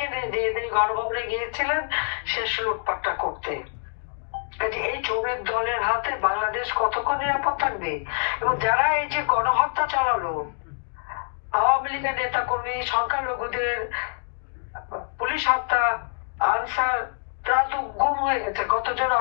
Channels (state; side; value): silent; right; digital silence